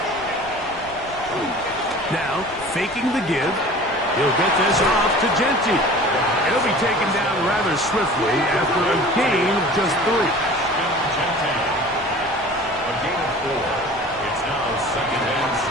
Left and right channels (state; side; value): noise; left; rumble, 22 dB below the sound